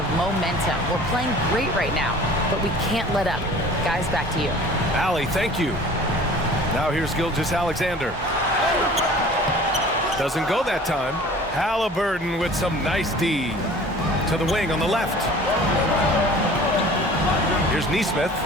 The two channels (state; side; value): normal; both; correlation 0.45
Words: momentum. We're playing great right now, but we can't let up. Guys, back to you. Allie, thank you. Now here's Gilgeous-Alexander. Doesn't go that time. Halliburton with some nice D. To the wing on the left. Here's Nesmith.